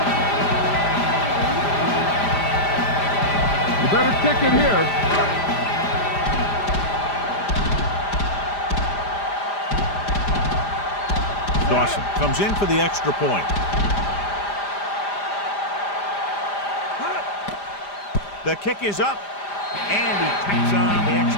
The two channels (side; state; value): right; late; 5.0 ms